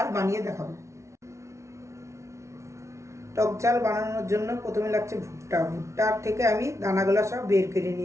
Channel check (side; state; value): left; late; 0.14 ms